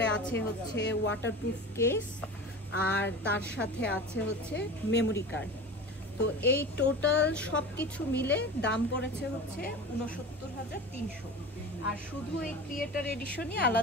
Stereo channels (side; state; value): both; normal; correlation 0.33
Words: আছে হচ্ছে ওয়াটারপ্রুফ কেস, আর তার সাথে আছে হচ্ছে মেমোরি কার্ড। তো এই টোটাল সব কিছু মিলে দাম পড়েছে হচ্ছে ৬৯,৩০০, আর শুধু এই ক্রিয়েটর এডিশনই